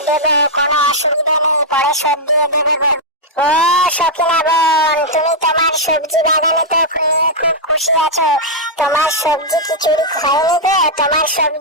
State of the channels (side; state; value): both; normal; correlation -0.05